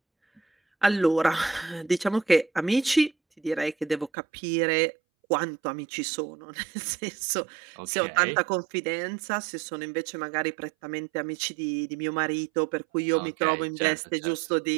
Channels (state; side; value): drops out; left; at 4.1 s